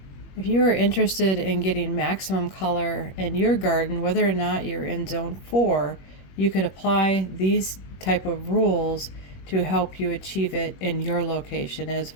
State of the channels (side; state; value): right; late; 21 ms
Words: If you are interested in getting maximum color in your garden, whether or not you're in Zone 4, you could apply these type of rules to help you achieve it in your location as